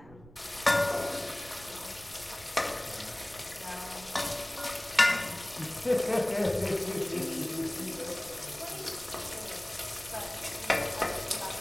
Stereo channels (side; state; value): right; noise; rumble, 20 dB below the sound